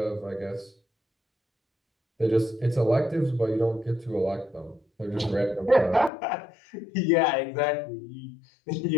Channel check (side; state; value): right; drops out; at 6.1 s